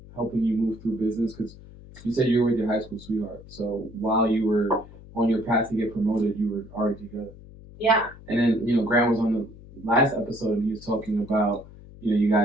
helping you move through business? Because you said you were with your high school sweetheart. So while you were on your path to get promoted, you were already together. Yeah. And then, Grant was on the last episode and he was talking about, you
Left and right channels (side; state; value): left; noise; hum, 19 dB below the sound